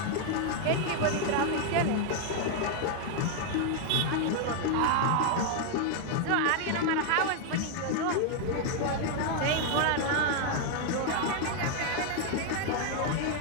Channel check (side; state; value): both; different; correlation 0.00